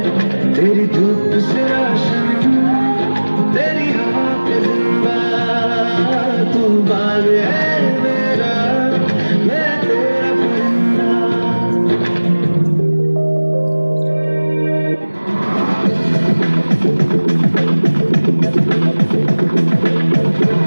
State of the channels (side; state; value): both; inverted; correlation -1.00